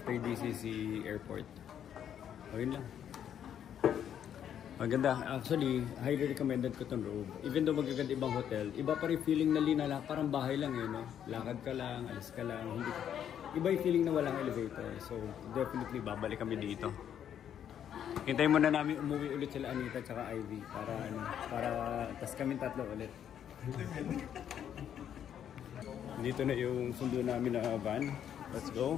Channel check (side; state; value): right; quieter; 9.4 dB